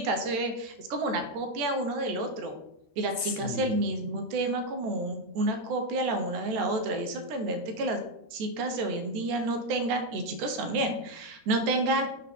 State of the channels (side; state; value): left; late; 14 ms